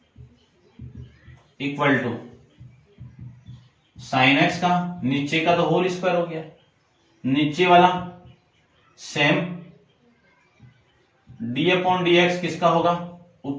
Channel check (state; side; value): identical; both; correlation 1.00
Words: equal to sine x का नीचे का तो होल स्क्वायर हो गया, नीचे वाला same D upon D x किसका होगा